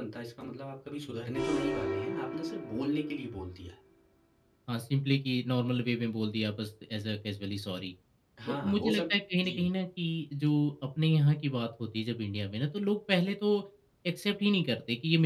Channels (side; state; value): both; identical; correlation 1.00